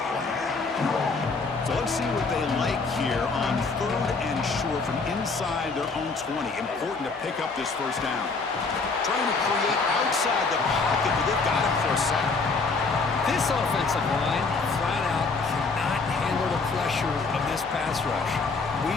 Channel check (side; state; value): right; quieter; 4.2 dB